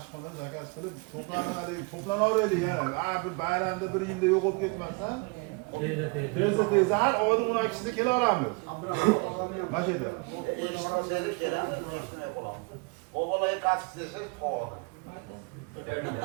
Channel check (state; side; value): quieter; left; 30.9 dB